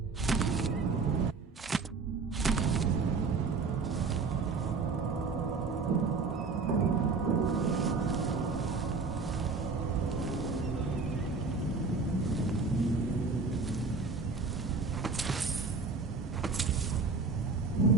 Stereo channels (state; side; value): quieter; left; 4.4 dB